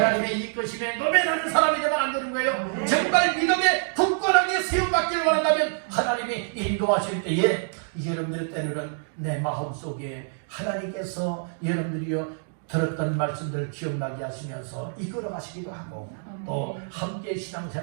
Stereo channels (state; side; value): silent; left; digital silence